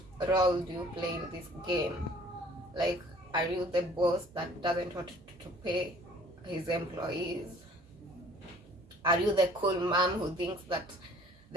role do you play in this game? Like, are you the boss that doesn't want to pay his employees? Are you the cool mom who thinks that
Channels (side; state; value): both; normal; correlation 0.53